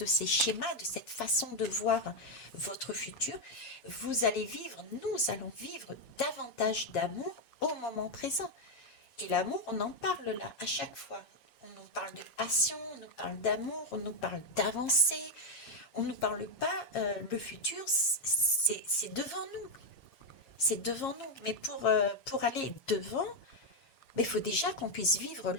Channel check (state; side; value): late; right; 7.4 ms